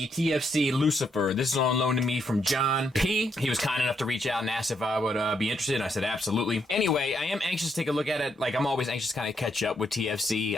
TFC Lucifer. This is on loan to me from John P. He was kind enough to reach out and ask if I would be interested, and I said absolutely. Anyway, I am anxious to take a look at it. Like, I'm always anxious to kind of catch up with TFC.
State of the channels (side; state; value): both; normal; correlation 0.77